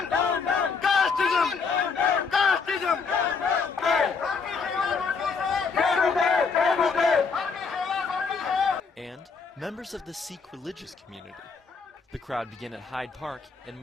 And members of the Sikh religious community. The crowd began at Hyde Park and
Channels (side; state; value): right; quieter; 5.1 dB